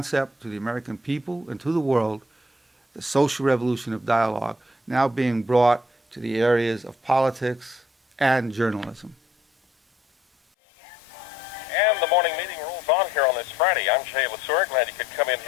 to the American people and to the world, the social revolution of dialogue, now being brought to the areas of politics and journalism. And the morning meeting rolls on here on this Friday. I'm Jay Lesur. Glad you could come in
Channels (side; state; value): both; normal; correlation 0.65